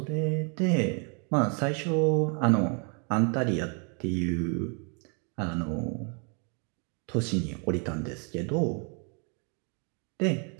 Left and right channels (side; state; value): left; quieter; 37.6 dB